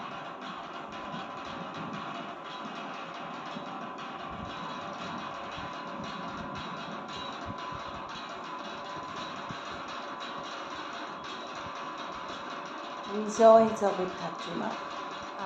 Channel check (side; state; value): both; identical; correlation 1.00